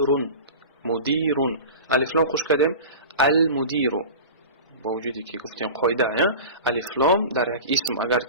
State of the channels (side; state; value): both; inverted; correlation -0.33